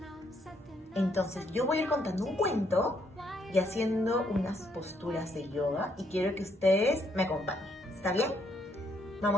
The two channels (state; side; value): normal; both; correlation 0.72